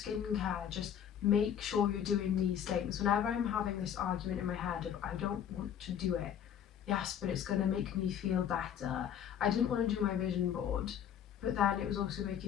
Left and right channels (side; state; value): right; quieter; 9.1 dB